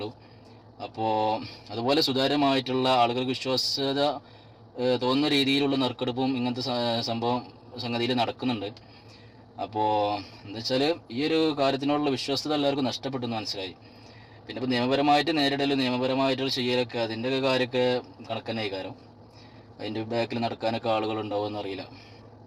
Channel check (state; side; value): identical; both; correlation 1.00